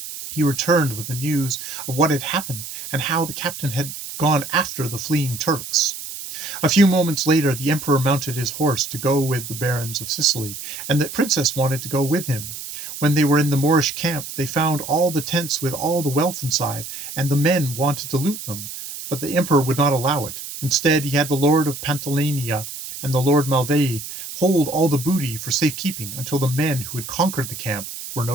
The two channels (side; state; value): right; noise; hiss, 9 dB below the sound